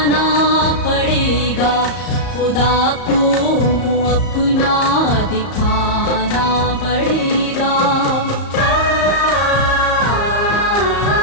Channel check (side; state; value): right; late; 34 ms